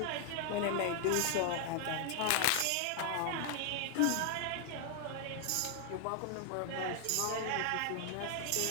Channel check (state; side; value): different; both; correlation 0.00